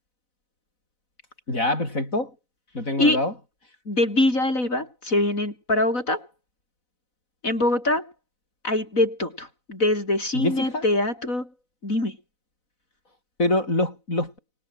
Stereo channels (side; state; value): right; late; 4.0 ms